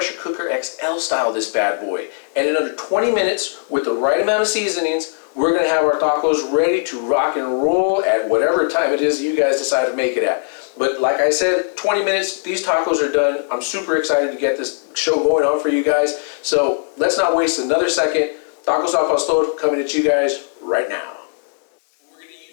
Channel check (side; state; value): right; silent; digital silence